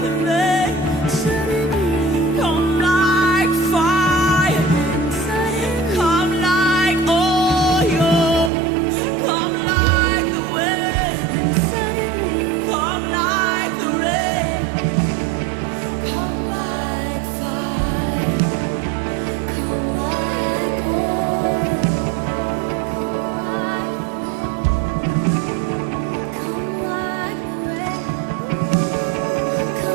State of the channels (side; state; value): left; drops out; at 8.5 s